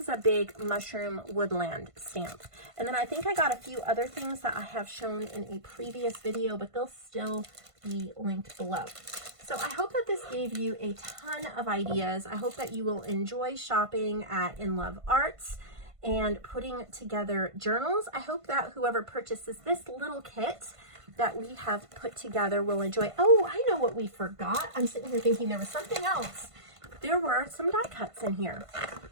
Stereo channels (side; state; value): left; late; 1.5 ms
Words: is a big mushroom woodland stamp. And then I think I got a few other things that I have shown in a previous video, but they'll still be linked below. So I hope that this gave you a ton of ideas. I hope that you will enjoy shopping at In Love Arts and putting together journals. I hope that whoever purchases this little kit that we have put together will enjoy. Oh, I know what we forgot. I'm sitting here thinking there was something else. There were some die cuts in here,